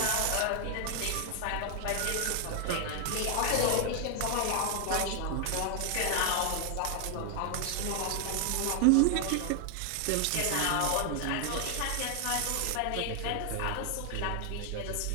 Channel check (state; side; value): different; both; correlation 0.00